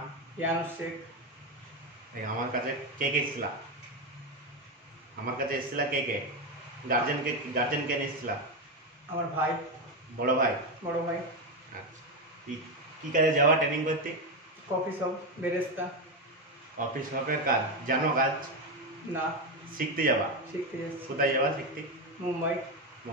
ইয়ানুস শেখ। আমার কাছে কে কে এসেছিলা? আমার কাছে এসেছিলা কে কে? গার্জেন কে নিয়ে এসেছিলা? আমার ভাই। বড় ভাই? বড় ভাই। আচ্ছা, কি কাজে যাওয়া ট্রেনিং করতে? কফি শপ, বেরেস্তা। অফিস শপের কাজ জানো? কাজ না, শিখতে যাবা? শিখতে যাচ্ছি। কোথায় যাবা শিখতে? মুম্বাই।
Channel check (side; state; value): both; normal; correlation 0.11